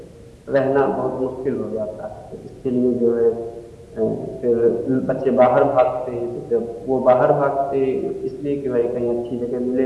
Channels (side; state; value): both; identical; correlation 1.00